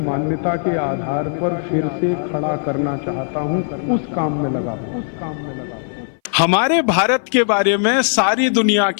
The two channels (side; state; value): right; silent; 59 dB below the other